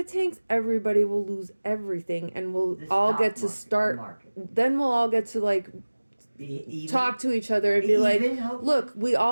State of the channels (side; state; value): both; inverted; correlation -1.00